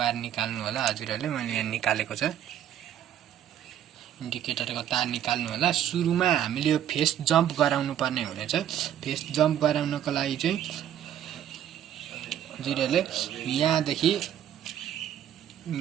निकाल्नु होला हजुरहरुले। मैले यहाँ निकालेको छ। इन्डिकेटरको तार निकाल्नु होला। सुरुमा हामीले यो फेस जम्प गराउनु पर्ने हुनेछ। फेस जम्प गराउनको लागि चाहिँ हजुरहरुले यहाँदेखि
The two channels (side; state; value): left; quieter; 10.8 dB